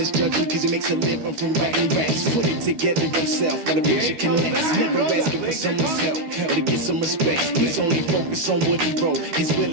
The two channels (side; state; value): left; late; 13 ms